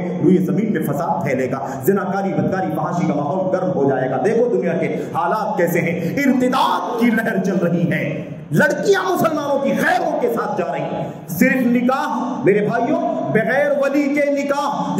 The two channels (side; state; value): both; identical; correlation 1.00